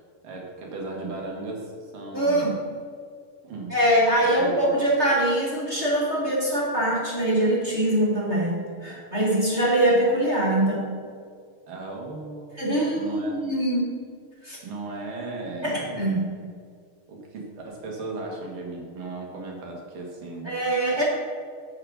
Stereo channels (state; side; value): late; left; 6.5 ms